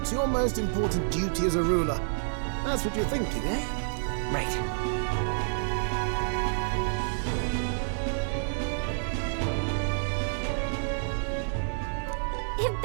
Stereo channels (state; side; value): silent; left; 59 dB below the other